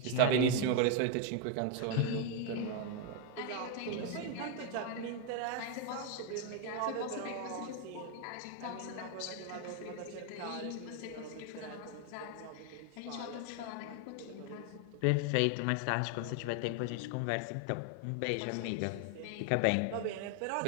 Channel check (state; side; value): different; both; correlation 0.01